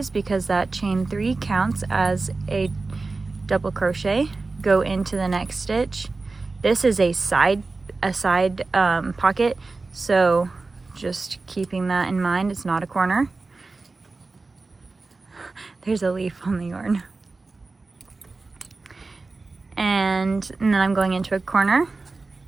because that chain 3 counts as a double crochet. Go into the next stitch. This is a side pocket, so just keeping that in mind. It's not a corner. There's a leaf on the yarn. And then I'm going into a corner.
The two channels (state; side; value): quieter; left; 3.7 dB